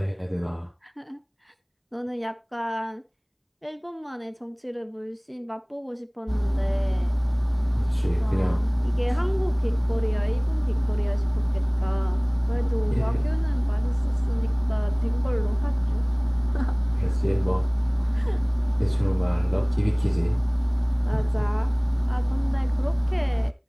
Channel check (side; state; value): both; identical; correlation 1.00